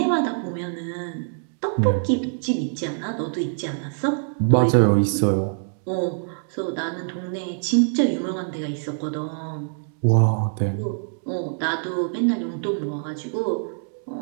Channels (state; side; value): silent; left; digital silence